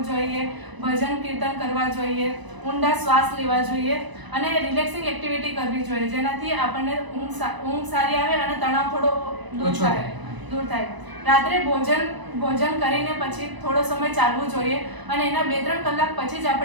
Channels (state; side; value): late; left; 1.0 ms